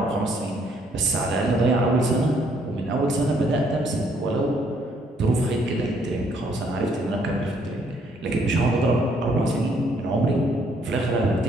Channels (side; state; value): both; normal; correlation 0.67